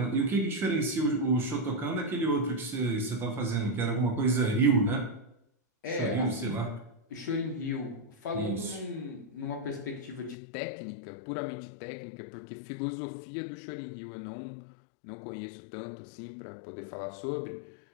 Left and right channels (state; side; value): drops out; right; at 10.4 s